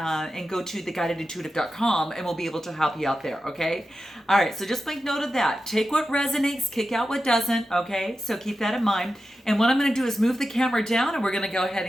go to theguidedintuitive.com. And we'll be able to help you out there, okay? All right, so just make note of that. Take what resonates, kick out what doesn't, okay? So keep that in mind. And what I'm going to do is move the camera down and we're going to go ahead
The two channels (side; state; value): both; normal; correlation 0.91